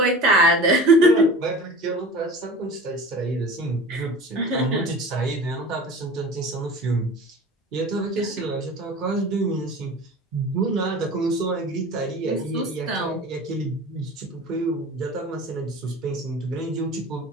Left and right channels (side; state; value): both; normal; correlation 0.38